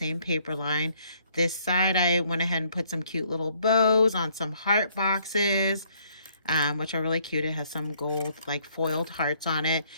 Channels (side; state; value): both; inverted; correlation -0.66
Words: paper line. This side I went ahead and put some cute little bows on some heart boxes, which are really cute. It has some gold like foiled hearts on it.